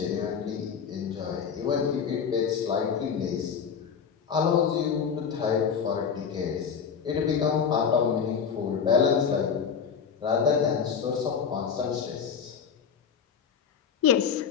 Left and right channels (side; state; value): right; quieter; 6.8 dB